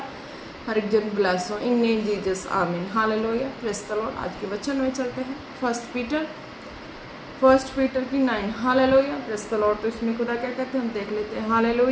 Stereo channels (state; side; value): identical; both; correlation 1.00